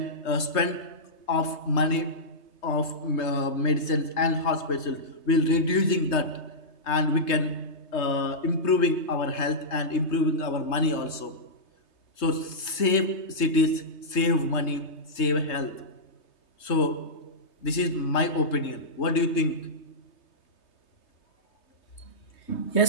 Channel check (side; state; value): right; late; 3.3 ms